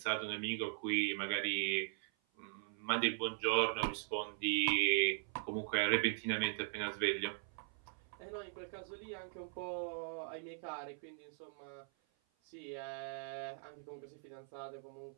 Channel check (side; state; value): left; silent; 51 dB below the other